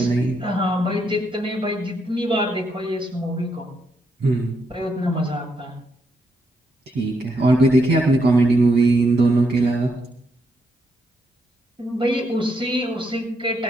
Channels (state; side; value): normal; both; correlation 0.78